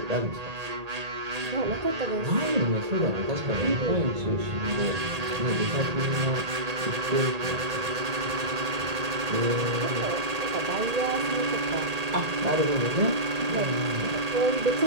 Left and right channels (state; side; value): late; left; 1.8 ms